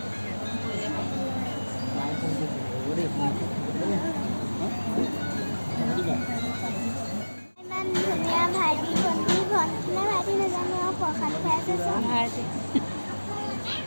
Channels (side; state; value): both; inverted; correlation -1.00